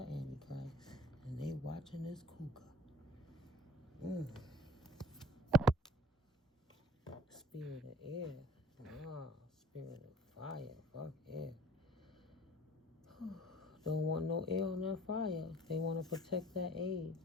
Antichrist. And they watching this cougar. Spirit of air. Spirit of fire. Fuck air. Don't want no air on that fire. They want to protect that egg.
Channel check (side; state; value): both; normal; correlation 0.48